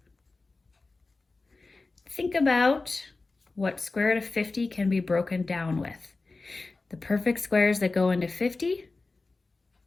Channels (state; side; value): quieter; right; 3.6 dB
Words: Think about what square root of 50 can be broken down with. The perfect squares that go into 50,